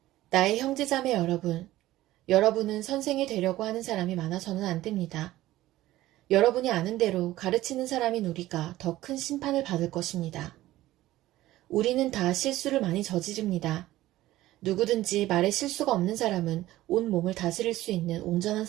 나의 형제자매 여러분, 여러분은 선생이 되려고 하는 사람이 많아서는 안 됩니다. 여러분이 아는 대로 가르치는 사람인 우리가 더 큰 심판을 받을 것입니다. 우리는 다 실수를 많이 저지릅니다. 누구든지 말에 실수가 없는 사람은 온 몸을 다스릴 수 있는 온전한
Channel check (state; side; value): quieter; left; 15.8 dB